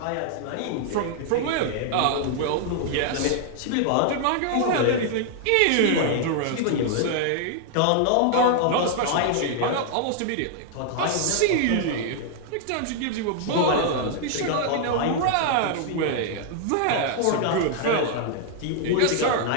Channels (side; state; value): both; different; correlation 0.00